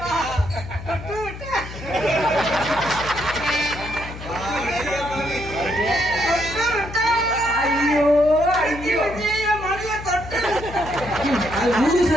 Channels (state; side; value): noise; left; hum, 11 dB below the sound